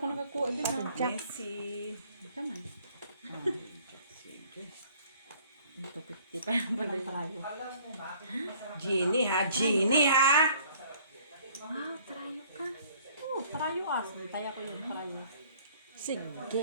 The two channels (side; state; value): both; inverted; correlation -0.57